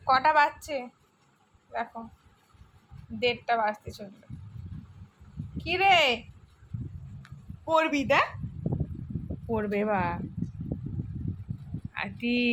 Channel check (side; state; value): both; identical; correlation 1.00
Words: কটা বাজছে দেখো, 1:30 বাজতে চলবে। কি রে পড়বি? দেখ পড়বে বা আটি,